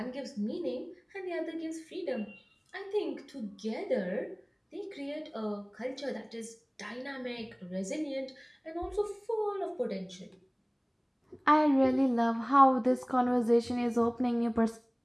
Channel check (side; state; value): both; identical; correlation 1.00